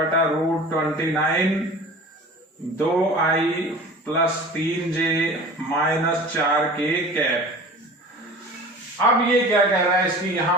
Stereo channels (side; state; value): both; normal; correlation 0.40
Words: 2i plus 3j minus 4k cap. अब ये क्या कह रहा है, इसकी